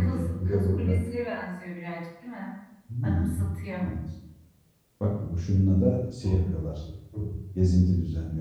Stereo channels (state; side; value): identical; both; correlation 1.00